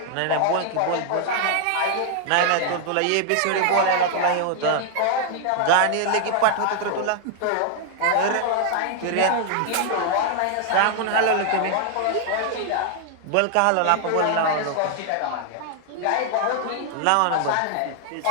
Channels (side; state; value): both; different; correlation 0.00